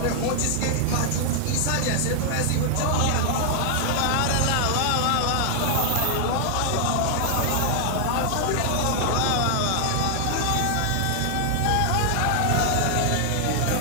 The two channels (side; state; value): both; different; correlation 0.00